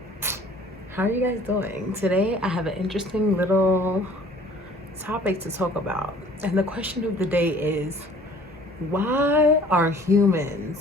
how are you guys doing? Today I have an interesting little topic to talk about. And the question of the day is, why are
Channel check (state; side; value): normal; both; correlation 0.52